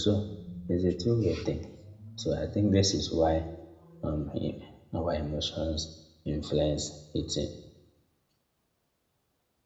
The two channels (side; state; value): both; identical; correlation 1.00